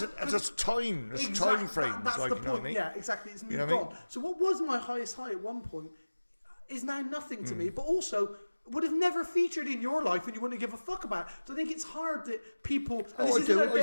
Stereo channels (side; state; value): both; inverted; correlation -1.00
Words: a time, there's time frame. That's like, the you point. Know what I mean? Yeah, exactly. It's moved you know what I mean? on. So what was my highest high at one point is now nothing to me. But also would have never featured in your life and you wouldn't give a fuck about. So I think it's hard that people. And this isn't a